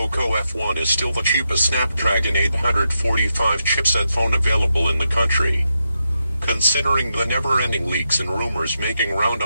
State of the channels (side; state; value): both; inverted; correlation -0.86